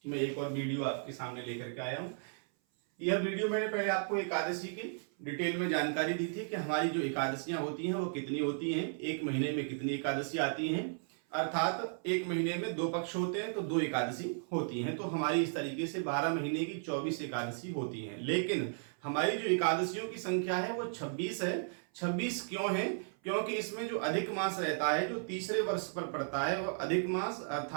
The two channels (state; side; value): silent; left; 54 dB below the other